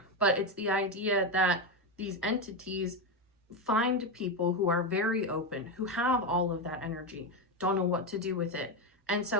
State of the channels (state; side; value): normal; both; correlation 0.11